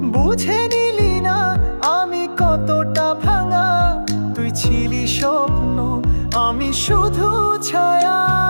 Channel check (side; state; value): both; inverted; correlation -1.00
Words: বুঝে নিলি না আমি কতটা ভাঙা, তুই ছিলি স্বপ্ন আমি শুধু ছায়া।